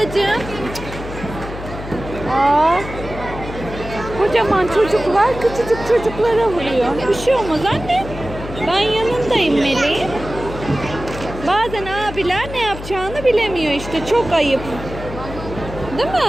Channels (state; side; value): noise; left; hum, 11 dB below the sound